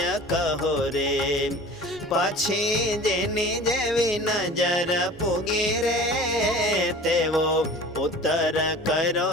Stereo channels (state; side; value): normal; both; correlation 0.41